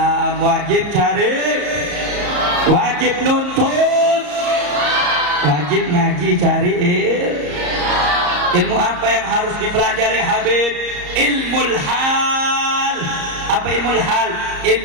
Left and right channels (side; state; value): left; late; 34 ms